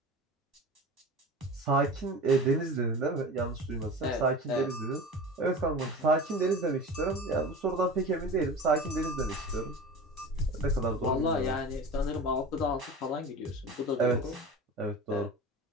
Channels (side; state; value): both; normal; correlation 0.33